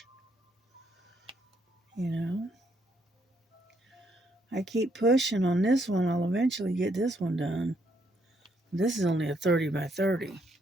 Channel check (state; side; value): normal; both; correlation 0.73